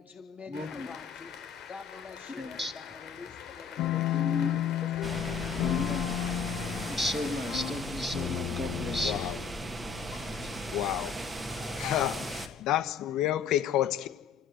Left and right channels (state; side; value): quieter; right; 6.2 dB